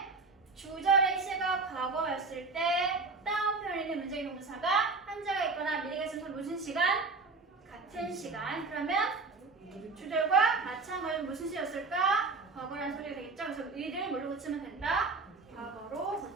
주절의 시가 과거였을 때 다운표현에 있는 문장의 동사가 현재가 있거나 미래가 있으면 무슨 시간? 같은 시간. 그러면 주절과 마찬가지로 무슨 시였을까? 과거라는 소리가 되겠죠? 그래서 의를 뭘로 고치면 된다? 과거로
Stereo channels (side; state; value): left; quieter; 3.9 dB